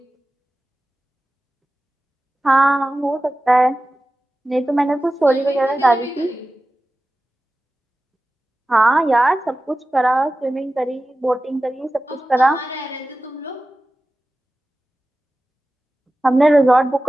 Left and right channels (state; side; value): normal; both; correlation 0.95